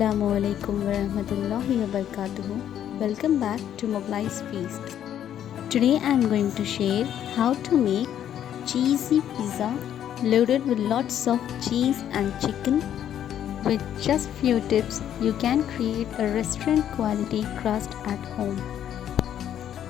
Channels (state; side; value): quieter; right; 10.3 dB